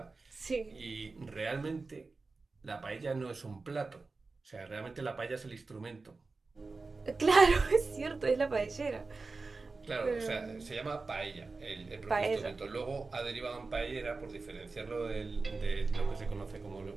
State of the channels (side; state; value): left; quieter; 3.9 dB